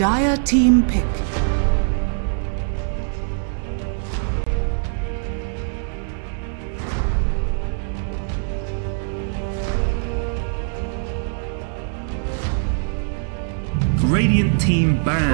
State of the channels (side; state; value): left; silent; 62 dB below the other